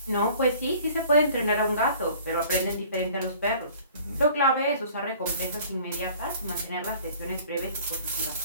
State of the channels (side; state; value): both; inverted; correlation -0.50